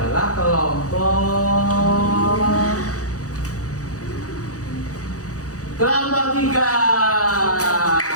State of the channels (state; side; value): late; right; 0.66 ms